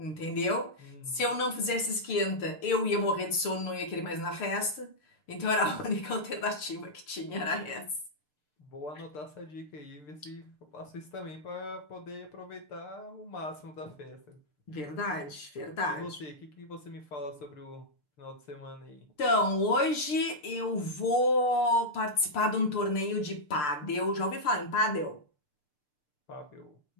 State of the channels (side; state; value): right; late; 6.7 ms